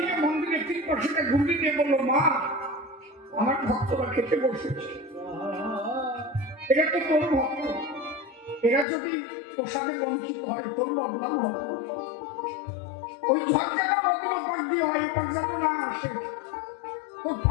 মন্দিরের 3 পাশে ঘুরিয়ে দিয়ে বললো, মা আমার ভক্তরা খেতে বসেছে, এটা তো তোর ভক্ত, এরা যদি প্রসাদে বঞ্চিত হয় তোর বদনাম হবে, ওই ঝড় যেন অন্য পাক দিয়ে হয়, এই পাক যেন না আসে, তোর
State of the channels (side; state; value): right; drops out; at 8.8 s